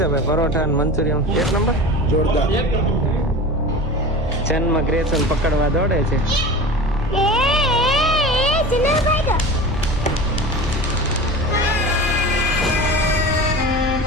ભાઈ? પરોઠા અને મંચુરિયન એક નંબર જોરદાર. ચેનમાં ગ્રેસન પકડવા દોડે છે.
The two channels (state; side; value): normal; both; correlation 0.32